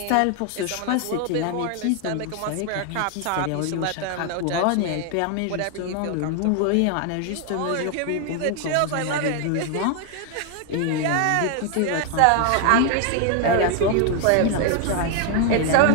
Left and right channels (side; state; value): both; different; correlation 0.00